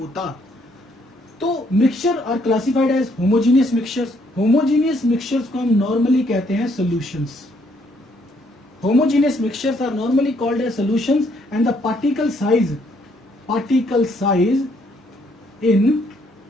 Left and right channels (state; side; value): normal; both; correlation 0.69